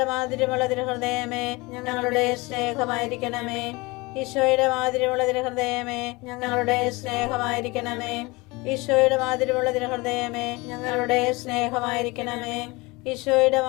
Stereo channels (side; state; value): right; quieter; 24.1 dB